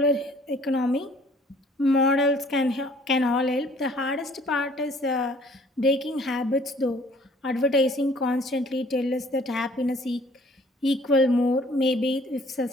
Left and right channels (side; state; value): both; normal; correlation 0.56